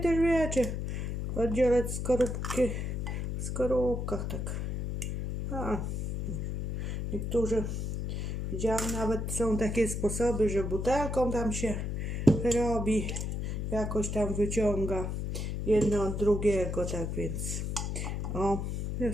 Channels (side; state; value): left; noise; hum, 2 dB below the sound